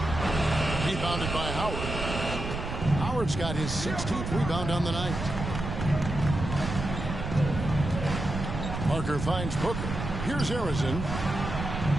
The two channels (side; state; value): right; noise; rumble, 5 dB below the sound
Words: Rebounded by Howard. Howard's got his 16th rebound on the night. Parker finds Booker. Here's Harrison.